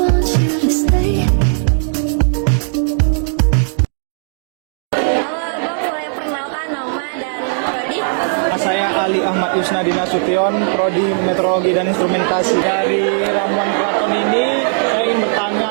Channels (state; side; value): silent; left; digital silence